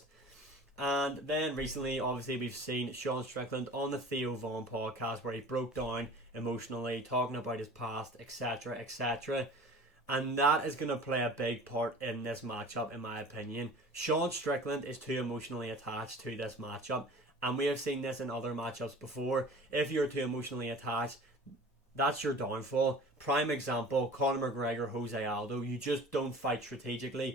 And then recently, obviously, we've seen Sean Strickland on the Theo Von podcast where he broke down emotionally, talking about his past, etc., etc. And that is going to play a big part in this matchup, in my opinion. Sean Strickland is too emotionally attached to this matchup. And we have seen this in other matchups before. If you're too emotionally attached, that's your downfall. Prime example, Conor McGregor, Jose Aldo. You just don't fight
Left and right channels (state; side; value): normal; both; correlation 0.42